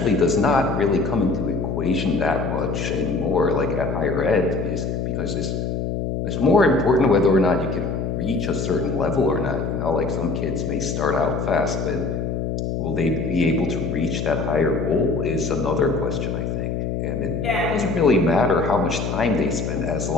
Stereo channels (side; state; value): left; noise; hum, 2 dB below the sound